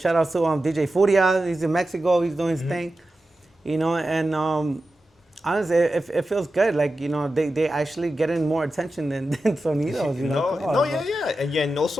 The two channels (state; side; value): normal; both; correlation 0.92